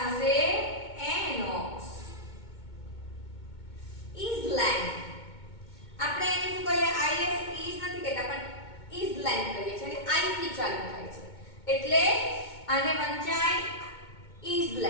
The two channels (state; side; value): late; right; 2.2 ms